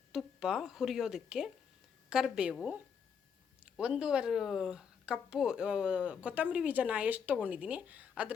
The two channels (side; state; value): right; quieter; 6.9 dB